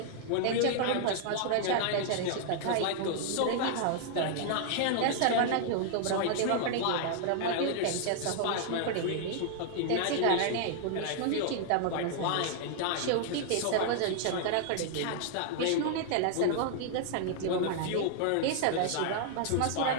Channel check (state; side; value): different; both; correlation 0.00